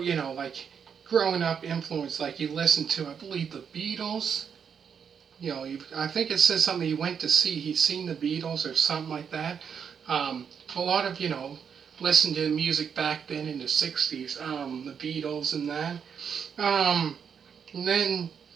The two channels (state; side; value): quieter; left; 7.1 dB